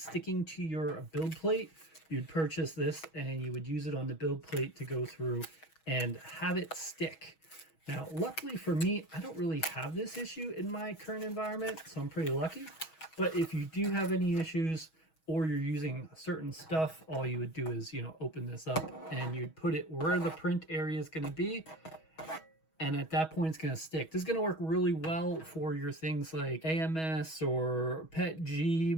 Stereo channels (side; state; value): right; late; 6.3 ms